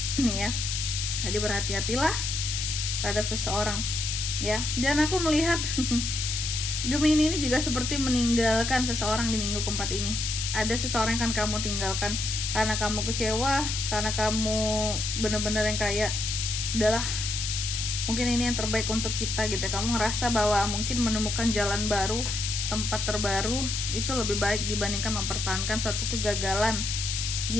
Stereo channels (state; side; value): noise; left; hiss, 2 dB below the sound